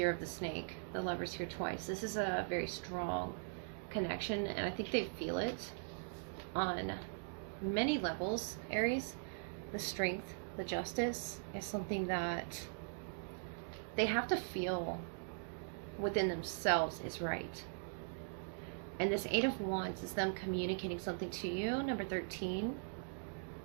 of the Snake. The Lover's here twice. This is a very strong connection, and I think they feel it on many levels, Aries. The strength, the justice is something that they have to feel within themselves is right. And this Eight of Wands is them communicating something to you, number 13.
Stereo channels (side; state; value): left; silent; digital silence